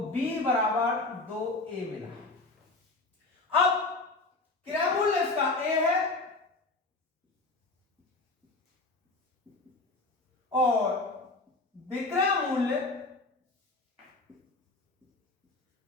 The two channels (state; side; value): quieter; right; 3.3 dB